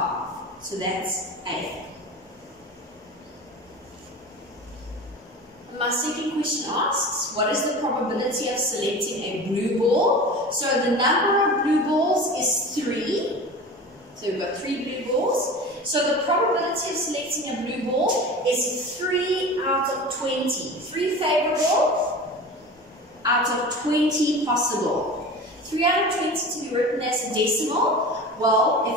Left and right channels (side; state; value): both; normal; correlation 0.34